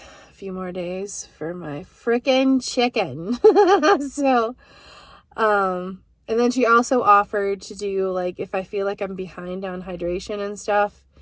a few more days for my frickin' chicken. So, and then she also offered to do, like, if I feel like I'm behind on hydration and stuff,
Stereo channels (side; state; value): both; identical; correlation 1.00